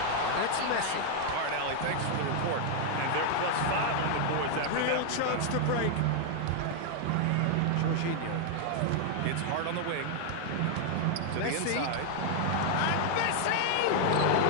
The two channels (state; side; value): different; both; correlation 0.00